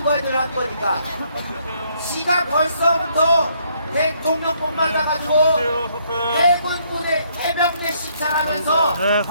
거에 들어간 거니까 지가 벌써부터 대통령뿐 맞아가지고 해군군의 해병대 시찰하면서 네,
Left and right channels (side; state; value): both; inverted; correlation -0.69